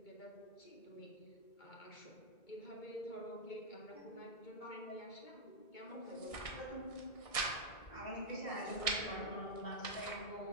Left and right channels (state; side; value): late; right; 1.7 ms